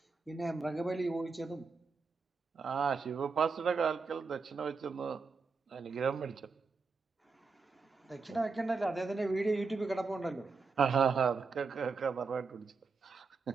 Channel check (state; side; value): quieter; left; 4.6 dB